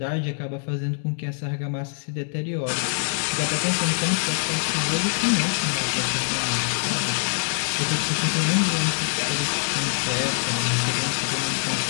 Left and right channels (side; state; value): right; silent; digital silence